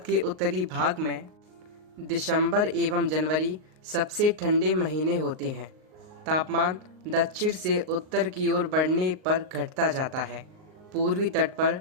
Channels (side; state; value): left; late; 38 ms